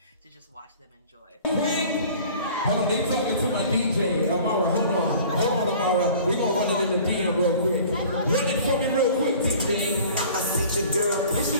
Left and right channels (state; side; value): inverted; both; correlation -0.47